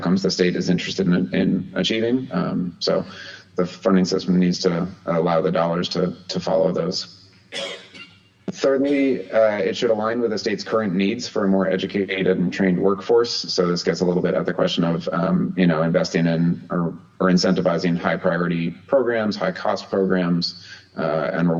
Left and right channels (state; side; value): identical; both; correlation 1.00